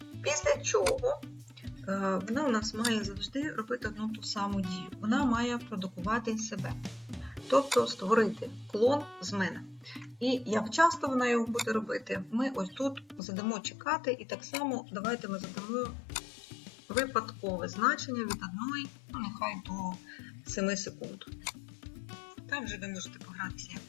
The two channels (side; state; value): right; drops out; at 13.2 s